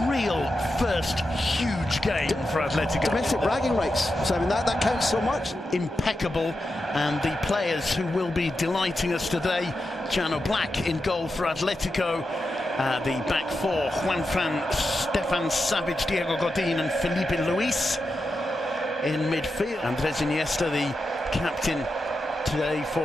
real first huge game for Atletico. Domestic bragging rights, Simon, that counts so much. Impeccable, and the players who will be delighting us today, Jano Black in goal for Atletico. The back four, Juanfran, Stefan Savic, Diego Godin and Felipe Luis in midfield. Andres Iniesta, the captain today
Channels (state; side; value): normal; both; correlation 0.89